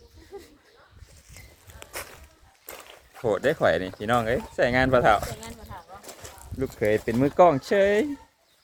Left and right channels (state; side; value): identical; both; correlation 1.00